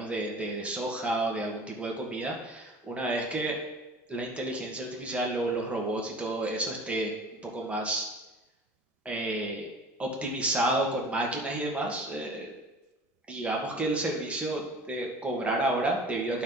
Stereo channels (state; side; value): normal; both; correlation 0.43